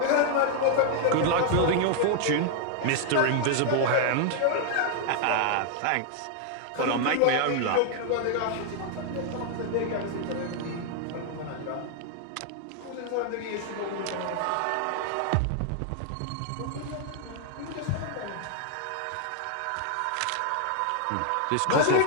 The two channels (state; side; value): different; both; correlation 0.00